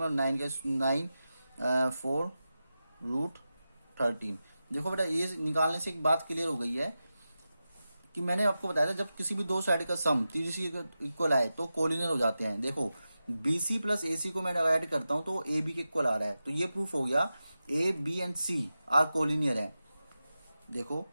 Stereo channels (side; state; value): both; inverted; correlation -0.92